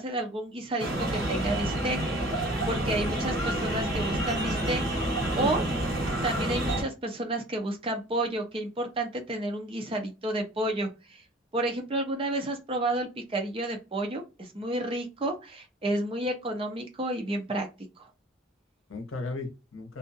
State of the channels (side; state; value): both; normal; correlation 0.47